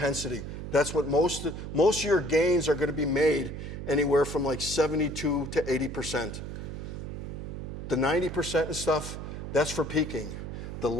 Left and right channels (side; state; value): right; noise; hum, 7 dB below the sound